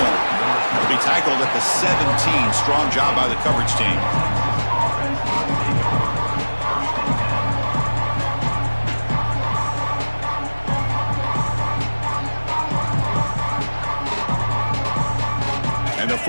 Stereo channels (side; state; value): both; inverted; correlation -1.00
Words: He'll be tackled at the 17. Strong job by the coverage team. And the